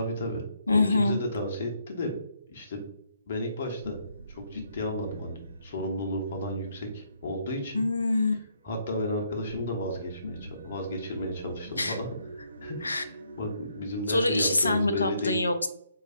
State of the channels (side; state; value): both; inverted; correlation -0.72